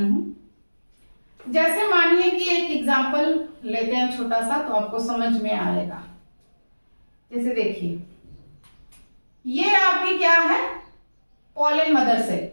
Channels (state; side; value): inverted; both; correlation -1.00